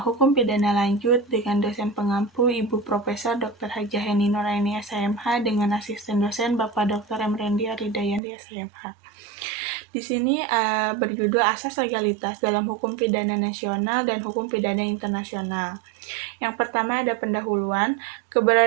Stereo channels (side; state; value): left; drops out; at 8.2 s